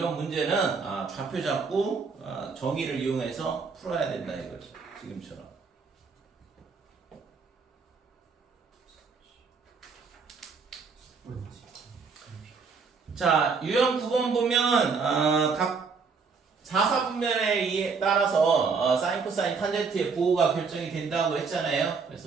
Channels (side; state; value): left; quieter; 5.1 dB